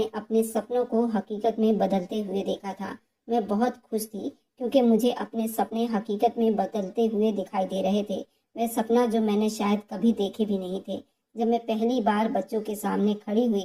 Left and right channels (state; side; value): identical; both; correlation 1.00